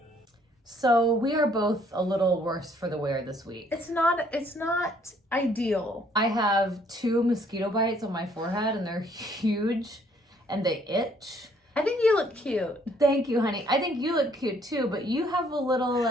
So we are both a little worse for the wear this week. It's not ideal. I have 2 mosquito bites on my forehead and they're huge and they itch. I think you look cute. Thank you, honey. I think you look cute too, but you have a little,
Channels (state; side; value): normal; both; correlation 0.64